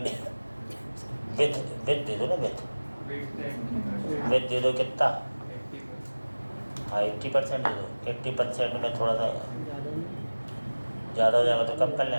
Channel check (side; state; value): both; inverted; correlation -1.00